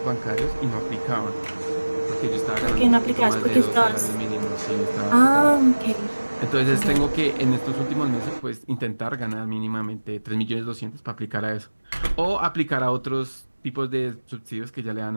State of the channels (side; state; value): both; inverted; correlation -1.00